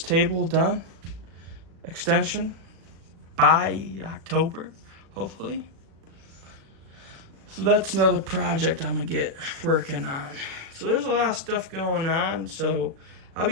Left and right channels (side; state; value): left; late; 37 ms